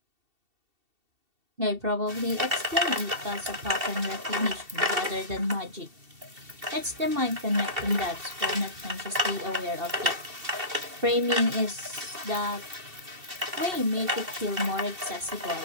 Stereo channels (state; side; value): late; left; 2.7 ms